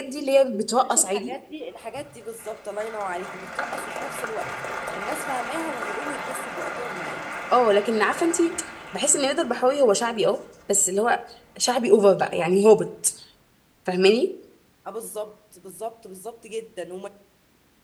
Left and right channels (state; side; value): identical; both; correlation 1.00